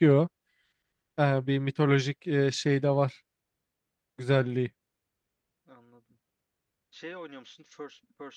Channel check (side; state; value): both; identical; correlation 1.00